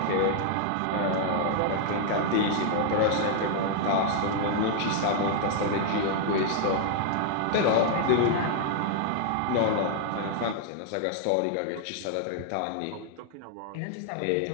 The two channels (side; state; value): both; different; correlation 0.00